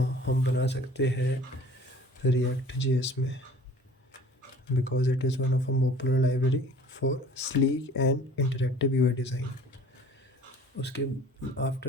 बना सकते हैं रिएक्ट जेएस में, because it is one of a popular library for sleek and interactive UI design. उसके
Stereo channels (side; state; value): both; normal; correlation 0.48